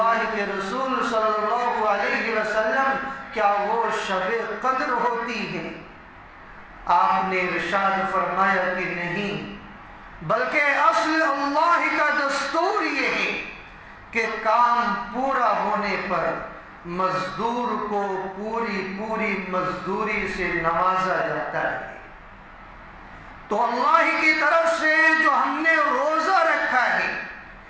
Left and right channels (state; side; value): identical; both; correlation 1.00